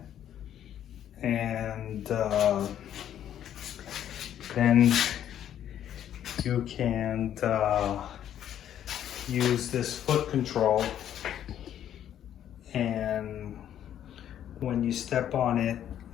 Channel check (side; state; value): right; quieter; 10.5 dB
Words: and then you can use this foot control, and when you step on it,